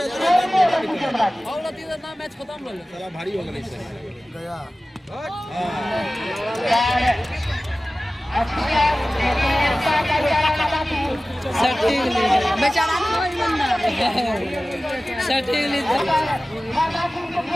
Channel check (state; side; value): normal; both; correlation 0.96